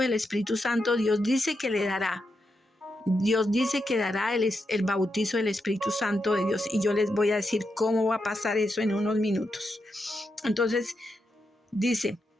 del Espíritu Santo. Dios dice que le dará. Dios dice que dará el bautizo del Espíritu Santo de Dios, y yo les voy a decir cómo va a pasar eso en unos minutos. Entonces, dice,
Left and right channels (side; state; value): both; normal; correlation 0.85